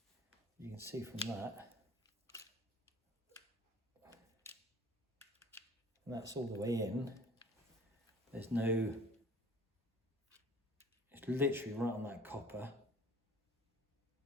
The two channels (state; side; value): normal; both; correlation 0.49